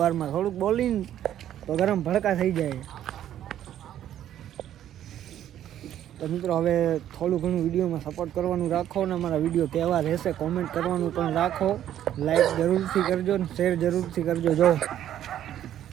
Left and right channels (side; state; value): left; quieter; 11.3 dB